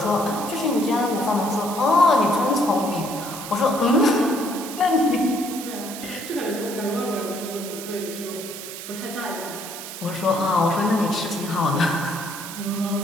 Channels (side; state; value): right; noise; hiss, 10 dB below the sound